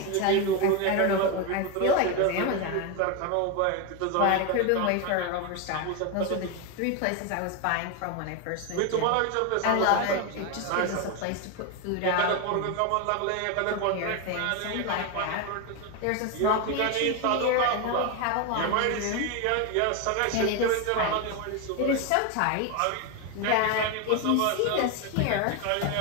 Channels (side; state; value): both; different; correlation 0.02